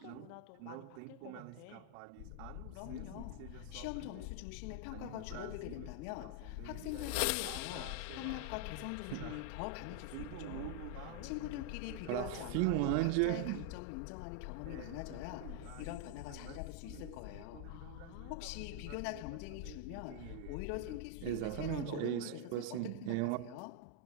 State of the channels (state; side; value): different; both; correlation 0.00